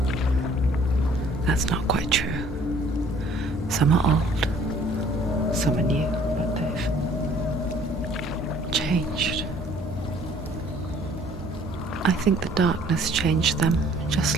that's not quite true. Some are old, some are new, but they've changed. I think the darkness changed them,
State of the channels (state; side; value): normal; both; correlation 0.57